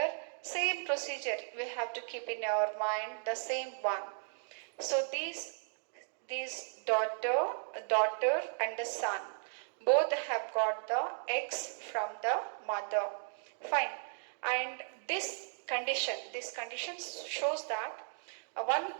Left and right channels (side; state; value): left; silent; digital silence